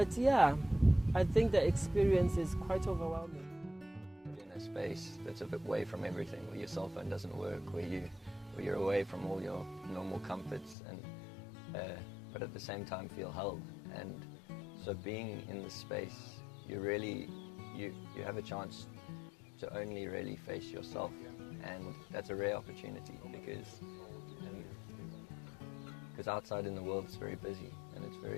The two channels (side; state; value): right; drops out; at 10.8 s